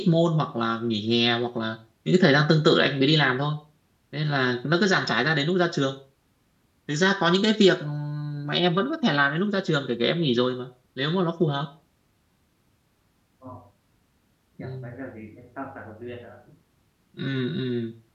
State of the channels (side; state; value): both; identical; correlation 1.00